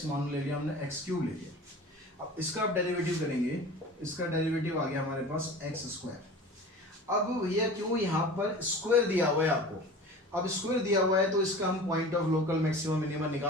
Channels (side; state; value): both; normal; correlation 0.38